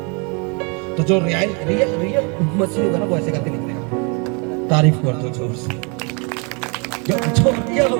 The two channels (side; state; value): left; quieter; 33.1 dB